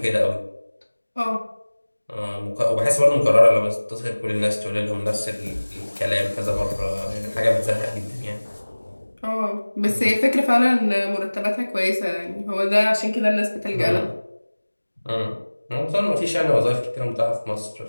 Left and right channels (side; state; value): both; inverted; correlation -1.00